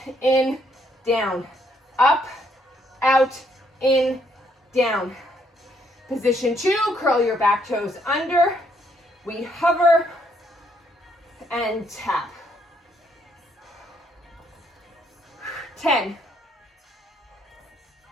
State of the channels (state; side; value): normal; both; correlation 0.71